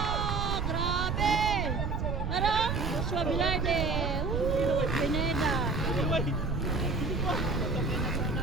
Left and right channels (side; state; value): right; noise; rumble, 1 dB below the sound